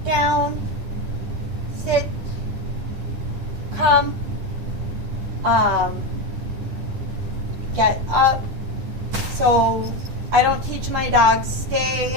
down, sit, come, get up. So I don't teach my dogs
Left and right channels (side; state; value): left; late; 10 ms